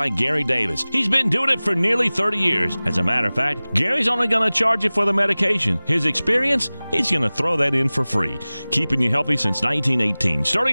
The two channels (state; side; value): inverted; both; correlation -0.99